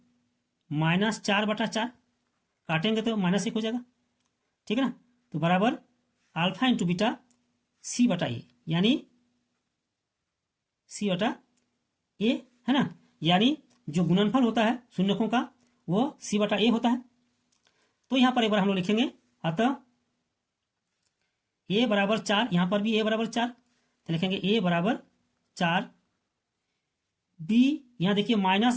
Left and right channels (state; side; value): identical; both; correlation 1.00